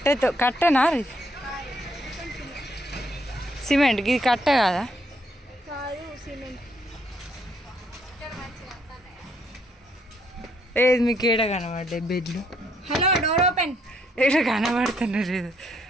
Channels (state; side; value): normal; both; correlation 0.71